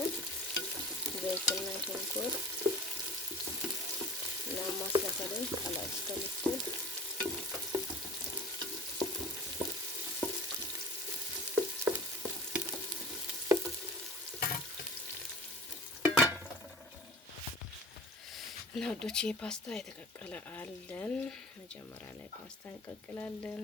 ዘይትና ሽንኩርት እና ማስላፈለን ቀላል እስከምትል እና ወዶቼ ፓስታ የተቀቀለ አለን። መጀመሪያ ላይ ፓስታ እንቀቅላለን።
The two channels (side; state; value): both; normal; correlation 0.41